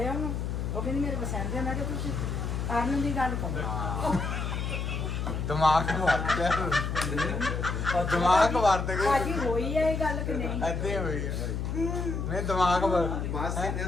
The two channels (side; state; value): left; noise; hum, 2 dB below the sound